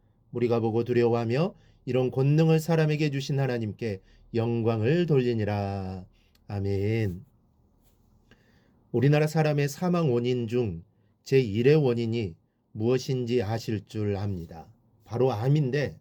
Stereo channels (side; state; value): both; identical; correlation 1.00